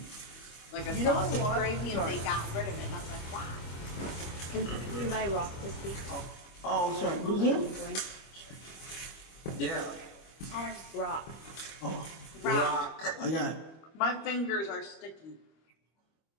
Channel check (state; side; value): late; right; 25 ms